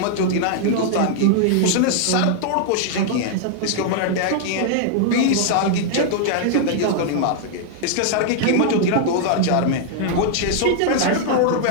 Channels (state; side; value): different; both; correlation -0.01